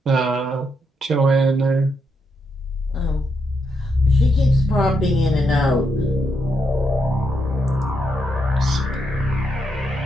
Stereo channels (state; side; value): normal; both; correlation 0.80